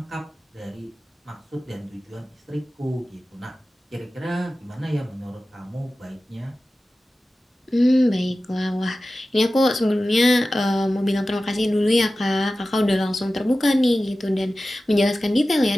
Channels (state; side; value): normal; both; correlation 0.95